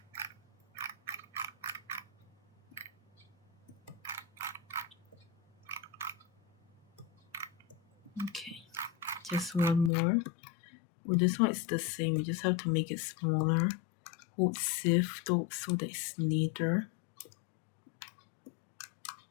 Okay, just one more. Well, this one is the same. You just have to make it smaller. Hold Shift so that it's neater.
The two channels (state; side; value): drops out; right; at 9.9 s